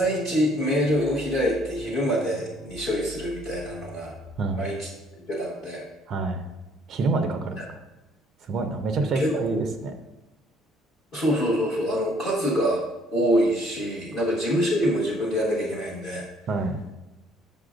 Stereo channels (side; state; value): both; normal; correlation 0.62